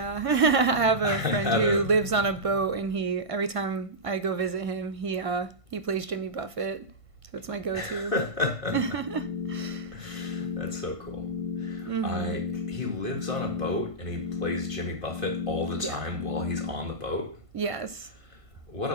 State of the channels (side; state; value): left; late; 1.5 ms